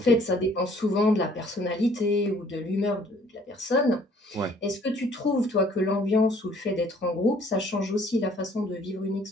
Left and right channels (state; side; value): normal; both; correlation 0.59